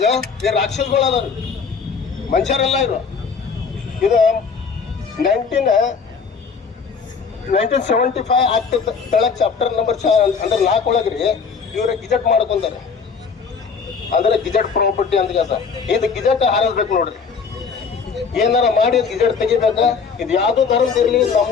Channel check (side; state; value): right; quieter; 5.6 dB